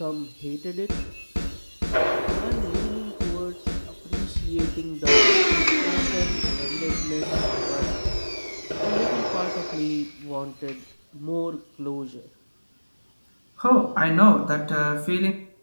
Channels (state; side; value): inverted; both; correlation -1.00